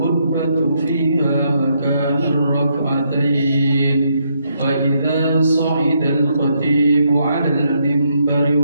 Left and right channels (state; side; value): inverted; both; correlation -0.76